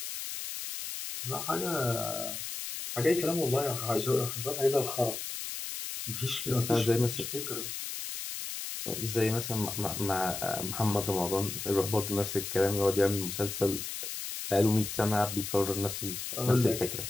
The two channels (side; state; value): left; noise; hiss, 6 dB below the sound